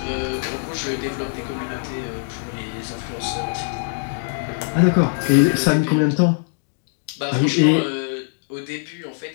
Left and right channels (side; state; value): right; silent; digital silence